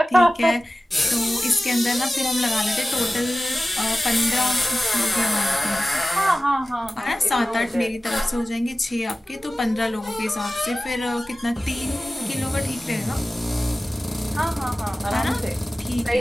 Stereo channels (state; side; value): normal; both; correlation 0.96